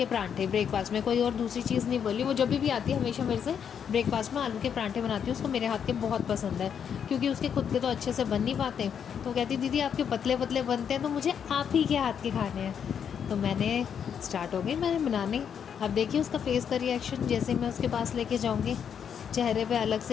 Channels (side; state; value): right; quieter; 7.8 dB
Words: परांठे ब्रेकफास्ट में, कोई और दूसरी चीज़ नहीं बोली। वो जब भी आती है हमेशा मेरे से ब्रेकफास्ट में आलू के परांठे बनाती है, उसको मेरे हाथ के बहुत पसंद है क्योंकि उसके खुद के तो अच्छे से बन नहीं पाते। तो कहती दीदी आपके पतले पतले बनते हैं तो मुझे आप ही के हाथ के खाने हैं। तो मैंने स्टार्ट हो गई मैंने बनाने। अब देखिए उसका फेस का रिएक्शन, जैसे मैं उसके पास लेके जाऊँगी चेहरे पे अलग से